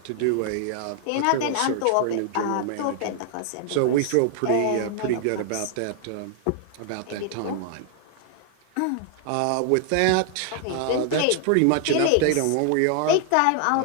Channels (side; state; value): both; different; correlation 0.00